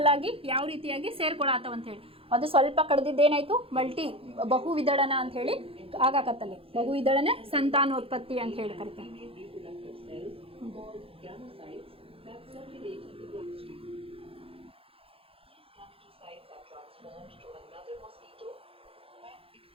ಆಗಿ ಯಾವ ರೀತಿಯಾಗಿ ಸೇರ್ಕೊಳತ್ತವ ಅಂತ ಹೇಳಿ. ಅದು ಸ್ವಲ್ಪ ಕಡ್ದಿದ್ದೇನಾಯ್ತು ಬಹು ವಿದಳನ ಅಂತ ಹೇಳಿ ಆಗಾಕತ್ತಲ್ಲಿ. ಬಹು ವಿದಳನ ಸಂತಾನೋತ್ಪತ್ತಿ ಅಂತ ಹೇಳಿ ಕರಿತಾರೆ. Female reproductive cells called gametophytes that circulate in the bloodstream. These gametophytes are transformed to another mosquito when it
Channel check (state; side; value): late; left; 0.27 ms